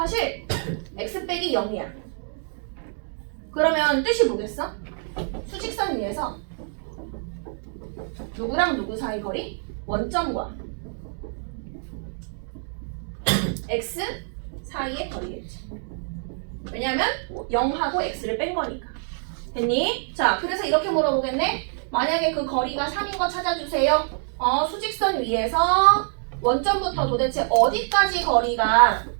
x 빼기 0이야. 그러면 뜻이 뭐겠어? 수직선 위에서 누구랑 누구 사이 거리? 원점과 x 사이의 거리겠지. 왜냐면 0하고 x를 뺀 거니까. 됐니? 자, 그래서 이렇게 물어보겠네. 만약에 그 거리가 3인 거 찾아주세요. 수직선 위에서 원점부터 도대체 어디까지 거리가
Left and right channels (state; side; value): silent; left; 55 dB below the other